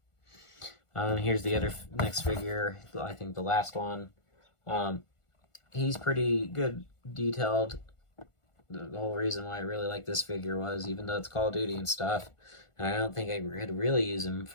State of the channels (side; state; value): right; late; 1.5 ms